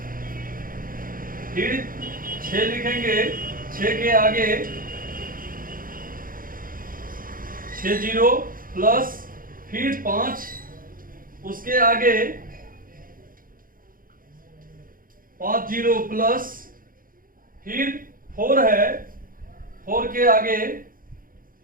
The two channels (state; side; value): late; left; 0.41 ms